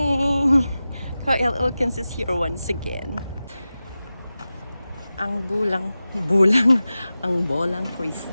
Kyle Elkins is here once again. Ang ang bolang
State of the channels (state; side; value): inverted; both; correlation -0.94